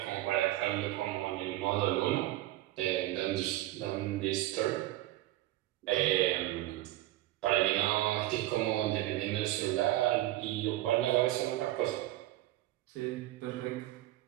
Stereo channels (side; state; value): left; quieter; 15.9 dB